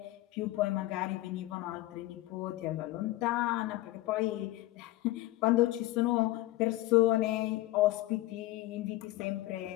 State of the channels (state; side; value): quieter; right; 17.3 dB